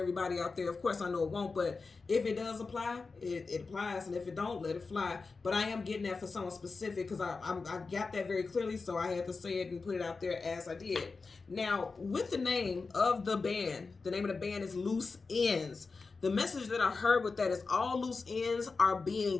out there. Of course, I know it won't, but if it does apply, it applies, and if it don't, let it fly. But I am getting that for someone specific, because I got that very clearly, so I had to say it and put it out there as I did. Now, with the name of the band, the name of the band is Loose Ends. The message that I heard with that is all loose ends are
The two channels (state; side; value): quieter; right; 4.3 dB